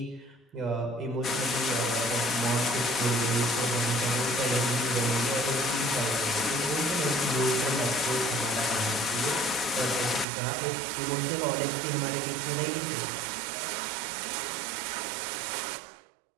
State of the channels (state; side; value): drops out; left; at 10.2 s